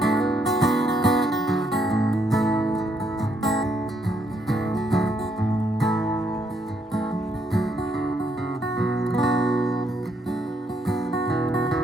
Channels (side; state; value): both; normal; correlation 0.73